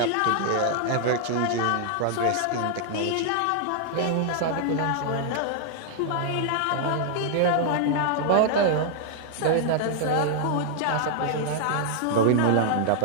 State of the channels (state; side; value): different; both; correlation -0.01